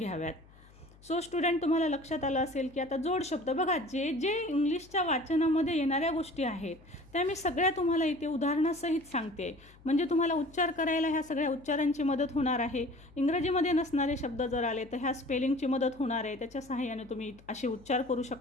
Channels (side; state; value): left; noise; hum, 25 dB below the sound